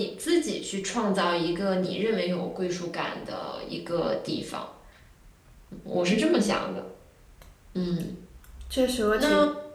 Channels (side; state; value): both; identical; correlation 1.00